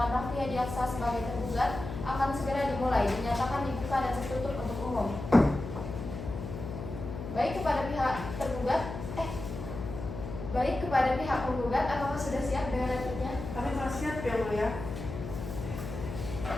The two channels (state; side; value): noise; left; hum, 8 dB below the sound